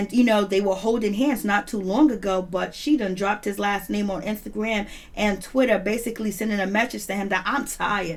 they were holding hands not too long ago, but she done dropped his last name on Instagram and Twitter, basically sending a message to him that I'm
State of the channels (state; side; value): identical; both; correlation 1.00